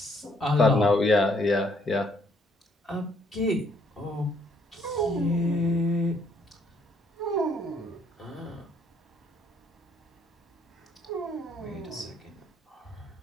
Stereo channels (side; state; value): both; normal; correlation 0.67